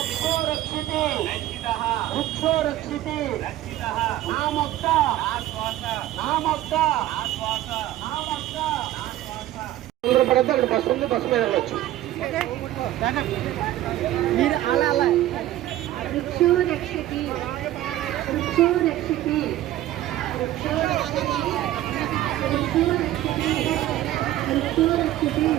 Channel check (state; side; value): quieter; left; 14.2 dB